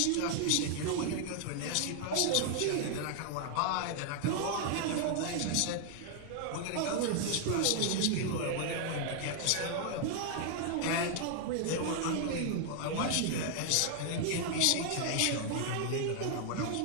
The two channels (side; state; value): both; different; correlation 0.00